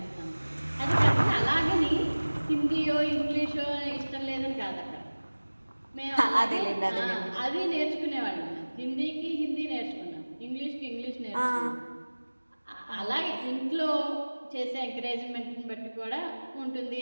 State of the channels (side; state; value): both; inverted; correlation -1.00